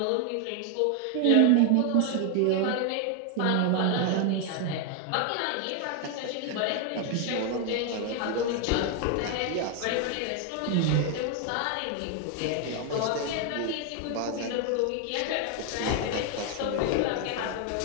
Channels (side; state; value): both; different; correlation 0.01